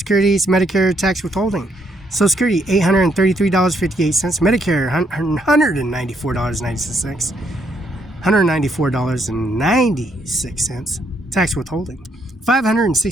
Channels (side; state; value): both; normal; correlation 0.73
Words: Medicare, tax withholding. Social Security, $833.58. Medicare, $194.96. $194.96. Tax withholding,